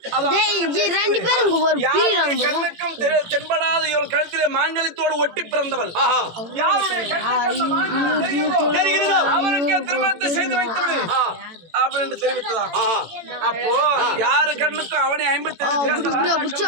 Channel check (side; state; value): left; late; 18 ms